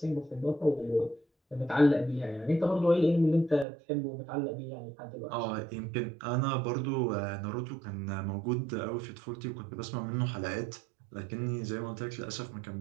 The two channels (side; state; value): left; drops out; at 3.7 s